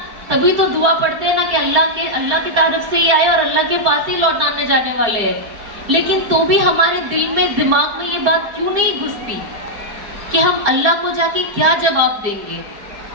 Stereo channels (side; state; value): left; late; 4.9 ms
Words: تبھی تو دعا پڑھتے ہیں نا کہ اللہ کی طرف سے ہی آئے اور اللہ کے پاس ہی لوٹانے جانے والے ہیں. لیکن تو بھی ہمارے دل میں دماغ میں یہ بات کیوں نہیں گھستی کہ ہم اللہ کو جا کے کیا جواب دیں گے.